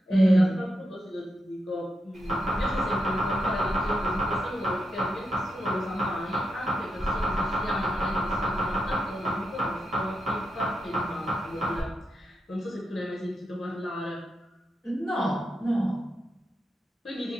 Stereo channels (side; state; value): both; normal; correlation 0.85